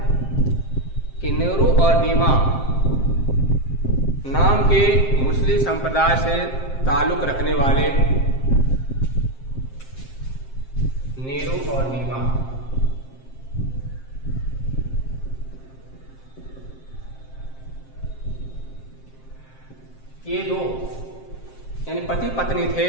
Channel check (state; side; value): late; right; 7.6 ms